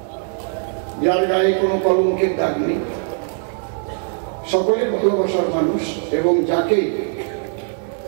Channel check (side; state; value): left; silent; 60 dB below the other